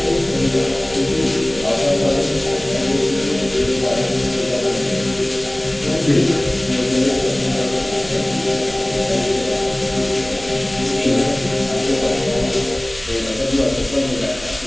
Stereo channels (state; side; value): noise; right; rumble, 18 dB below the sound